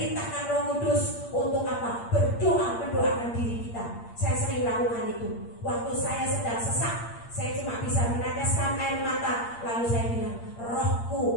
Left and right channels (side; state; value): right; late; 8.6 ms